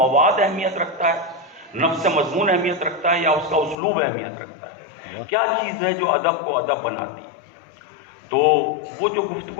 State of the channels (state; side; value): drops out; right; at 3.8 s